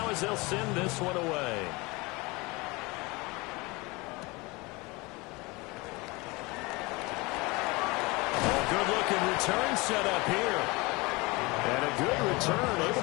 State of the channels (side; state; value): right; quieter; 24.7 dB